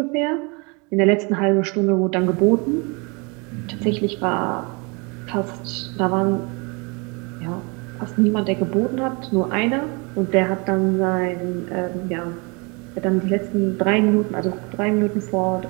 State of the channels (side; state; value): left; quieter; 30.4 dB